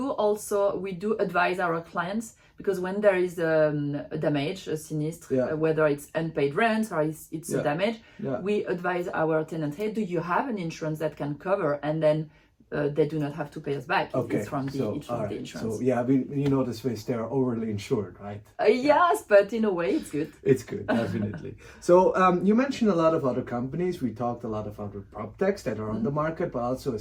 advise our clients, because when there is a damage, a sinistre, whether it's unpaid rent or it's a damage, we advise our tenant, hey, do you have an insurance that can cover? And then they do not have to pay us back. It's from the insurance. So the Swiss, they are overly insured, right? Yes, but in a way it's good. It's good, definitely. So you mentioned a lot of other companies. We talked a lot of other PropTechs that are on the market, but also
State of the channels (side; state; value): both; identical; correlation 1.00